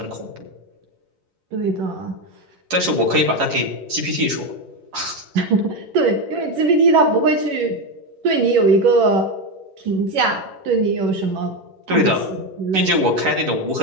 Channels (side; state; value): left; late; 11 ms